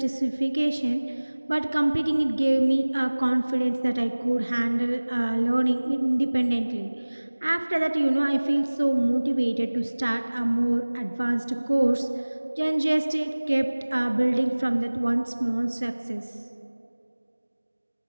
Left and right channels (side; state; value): both; inverted; correlation -1.00